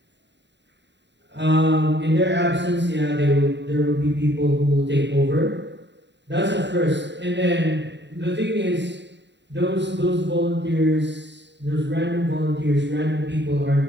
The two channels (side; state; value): left; late; 0.52 ms